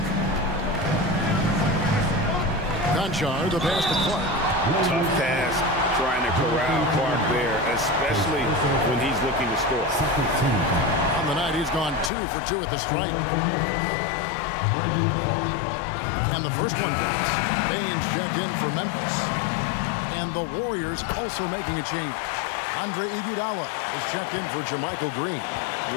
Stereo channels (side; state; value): right; drops out; at 12.1 s